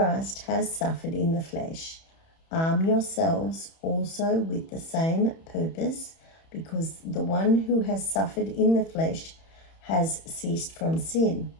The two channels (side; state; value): right; late; 31 ms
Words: has suffered in the flesh, arm yourselves also with the same purpose, because the one who has suffered in the flesh has ceased from sin,